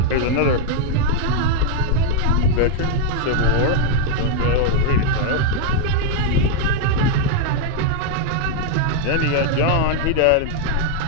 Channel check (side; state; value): both; different; correlation 0.00